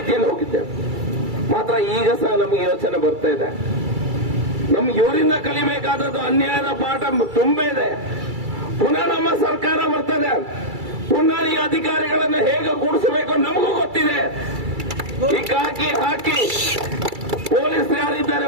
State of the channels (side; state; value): left; late; 2.3 ms